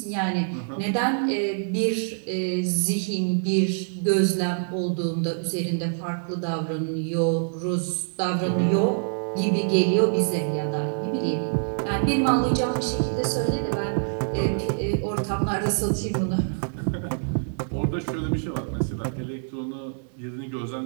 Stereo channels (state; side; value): silent; left; digital silence